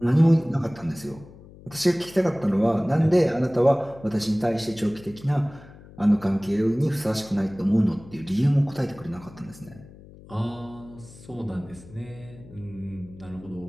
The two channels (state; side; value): noise; left; hum, 20 dB below the sound